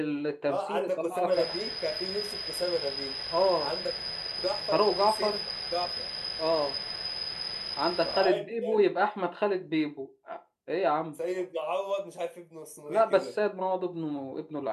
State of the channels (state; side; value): identical; both; correlation 1.00